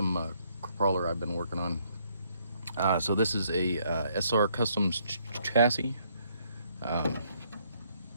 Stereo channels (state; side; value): inverted; both; correlation -0.69